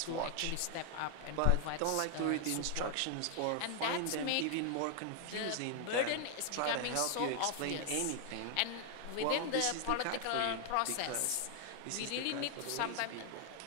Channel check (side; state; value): both; different; correlation 0.00